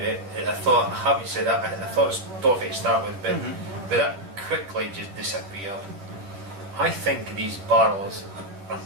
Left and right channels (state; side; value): late; left; 10 ms